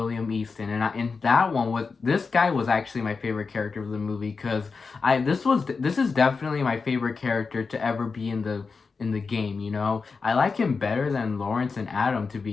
Easton. And that one was, this guy was actually my favorite character of the movie, because this is definitely my favorite character to ever be in the game, you know? I like him better than Lawrence and Adam, to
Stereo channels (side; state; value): right; quieter; 4.8 dB